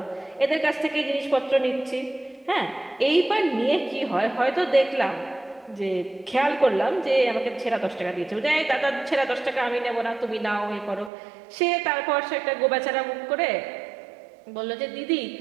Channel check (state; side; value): drops out; left; at 11.1 s